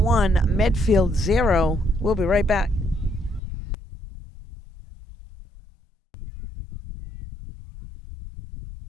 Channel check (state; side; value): drops out; right; at 3.4 s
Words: 1, Medfield 0. We'll be right back.